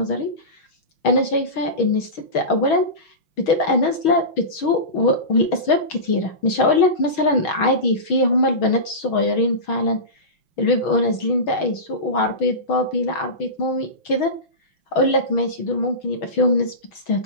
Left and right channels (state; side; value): late; right; 6.2 ms